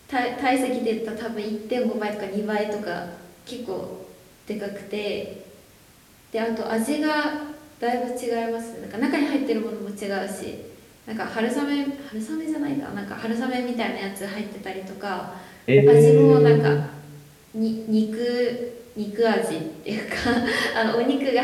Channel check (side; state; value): both; identical; correlation 1.00